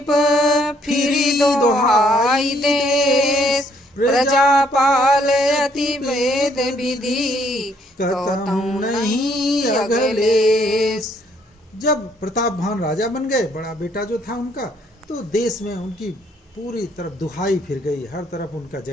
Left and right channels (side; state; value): both; normal; correlation 0.67